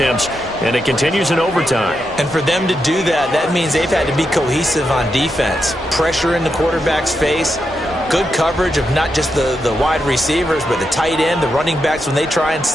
and it continues in overtime. And for them to do that, that means they've had to be cohesive on defense. Pressure in the quarterback's face, good coverage of not just the wide receivers, but the tight end, the running backs when they try and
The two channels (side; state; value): both; normal; correlation 0.85